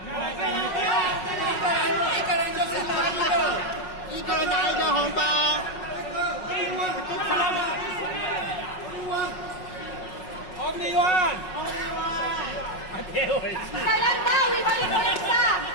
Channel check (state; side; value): late; right; 5.5 ms